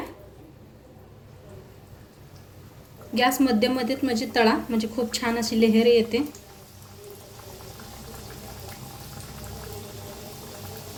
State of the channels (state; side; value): identical; both; correlation 1.00